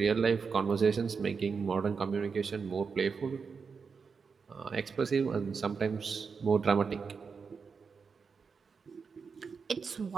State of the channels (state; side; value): quieter; left; 5.5 dB